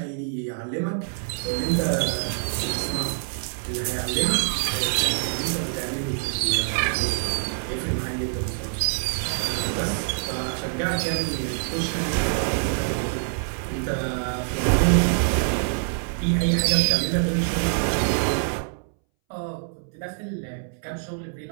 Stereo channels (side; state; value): left; silent; 61 dB below the other